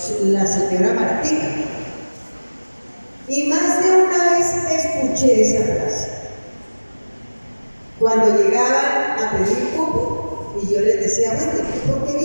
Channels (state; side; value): inverted; both; correlation -1.00